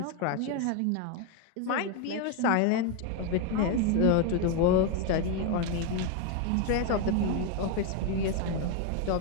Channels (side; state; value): both; different; correlation 0.01